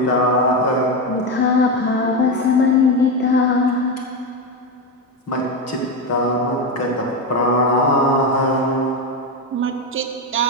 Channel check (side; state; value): both; normal; correlation 0.13